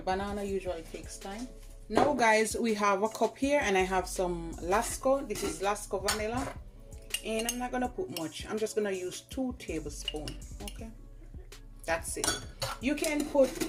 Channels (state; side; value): identical; both; correlation 1.00